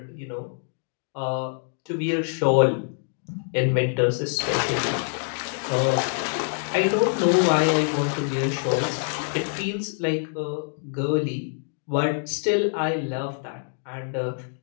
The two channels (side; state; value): right; silent; 61 dB below the other